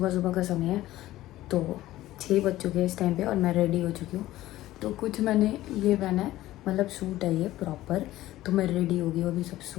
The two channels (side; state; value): right; quieter; 15.5 dB